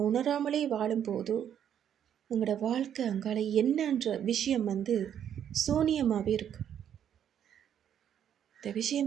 உணராமலே வாழும்போது எங்களோட வாழ்க்கை அங்கால என்னன்ற விஷயம் சூனியமாகவே இருக்கு. இந்த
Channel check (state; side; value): quieter; left; 9.4 dB